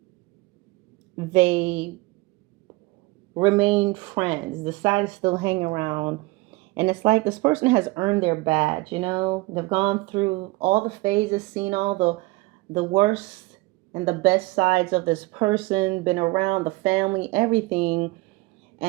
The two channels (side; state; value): left; quieter; 22.5 dB